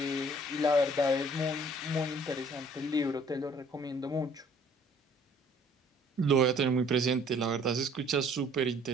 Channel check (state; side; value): normal; both; correlation 0.57